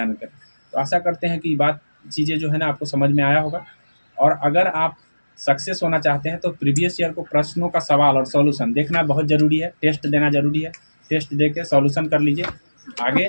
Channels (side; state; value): both; inverted; correlation -1.00